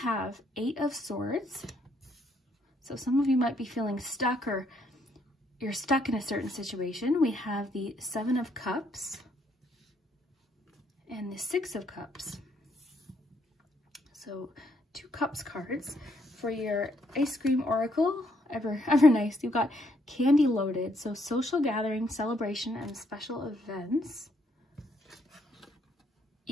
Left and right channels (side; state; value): both; normal; correlation 0.71